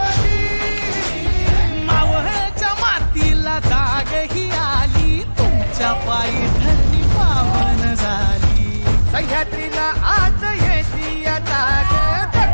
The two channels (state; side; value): inverted; both; correlation -1.00